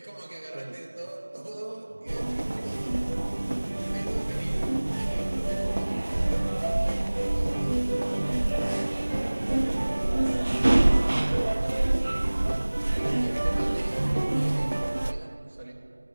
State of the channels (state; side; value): inverted; both; correlation -1.00